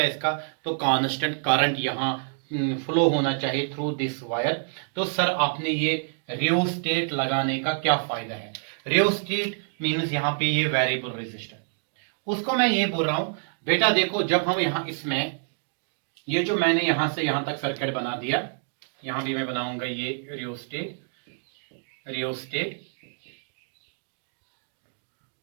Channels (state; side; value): silent; left; digital silence